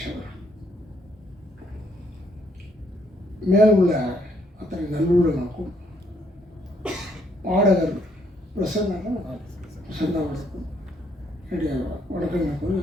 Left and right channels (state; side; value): normal; both; correlation 0.70